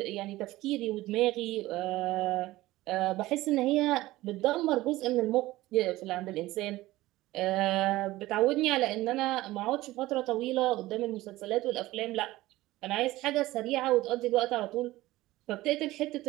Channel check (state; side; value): quieter; left; 17.6 dB